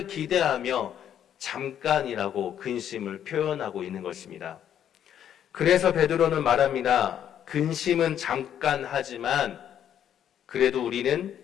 기대하며 잠깐이라고 근심을 표현하고 있는 것입니다. 그래서 베드로는 말합니다. 근심은 잠깐 하지만 그래도 우리는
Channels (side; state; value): right; quieter; 9.8 dB